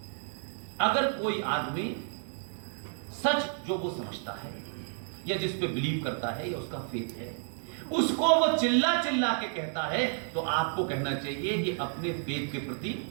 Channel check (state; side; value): silent; left; 57 dB below the other